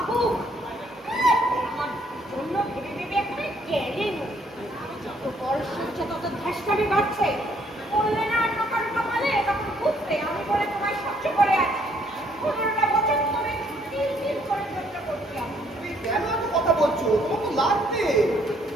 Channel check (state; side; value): normal; both; correlation 0.66